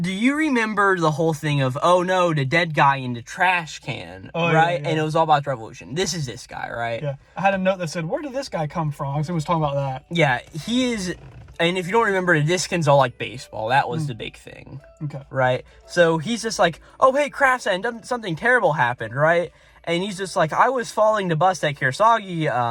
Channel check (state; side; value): identical; both; correlation 1.00